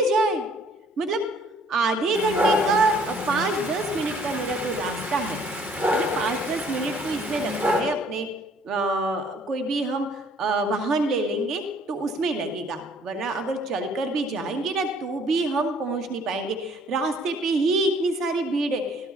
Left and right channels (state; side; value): normal; both; correlation 0.59